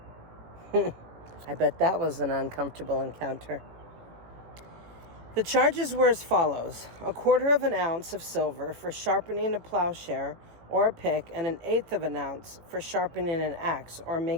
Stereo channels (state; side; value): late; left; 18 ms